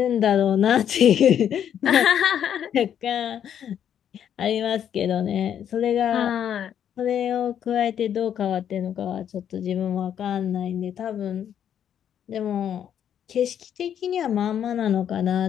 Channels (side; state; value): right; quieter; 9.3 dB